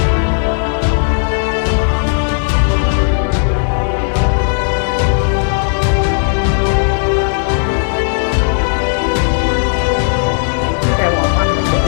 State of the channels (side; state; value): right; silent; digital silence